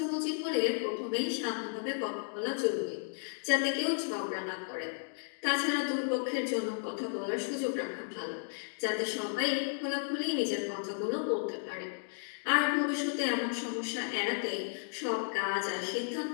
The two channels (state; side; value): silent; right; digital silence